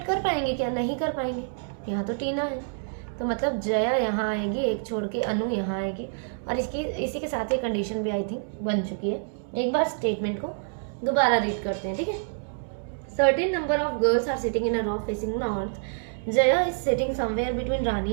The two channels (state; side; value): silent; left; digital silence